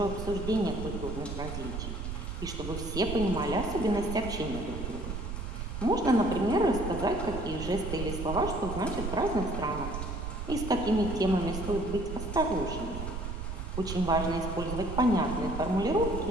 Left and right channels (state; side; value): noise; right; rumble, 5 dB below the sound